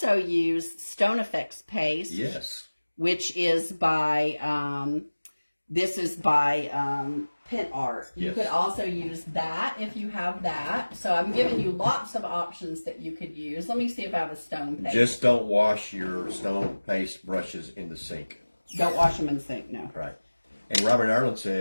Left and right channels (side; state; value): both; inverted; correlation -1.00